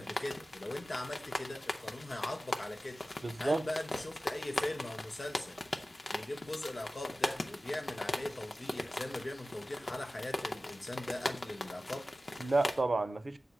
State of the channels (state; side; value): normal; both; correlation 0.96